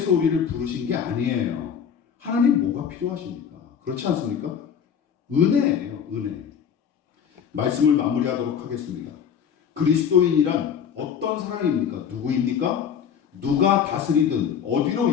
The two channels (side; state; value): right; quieter; 7.8 dB